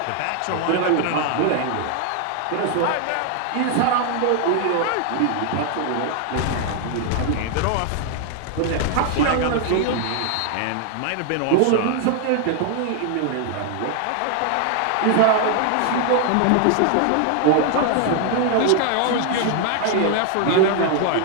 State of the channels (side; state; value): both; different; correlation 0.00